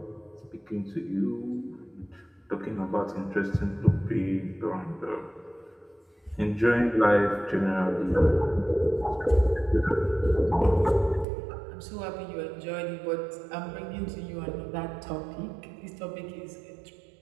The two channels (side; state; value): left; drops out; at 11.2 s